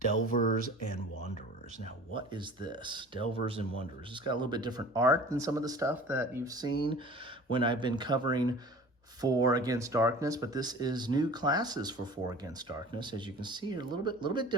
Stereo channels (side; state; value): both; normal; correlation 0.43